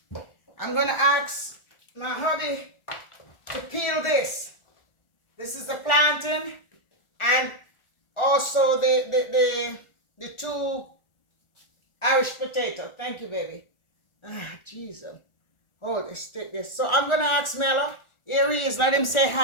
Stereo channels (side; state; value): right; late; 1.4 ms